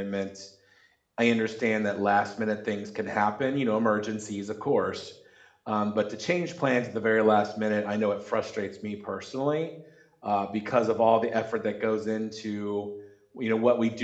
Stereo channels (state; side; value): identical; both; correlation 1.00